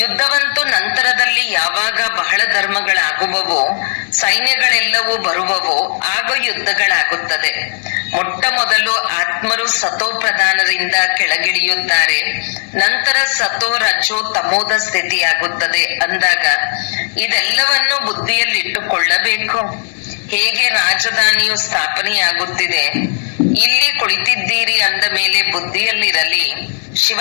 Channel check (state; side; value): silent; right; digital silence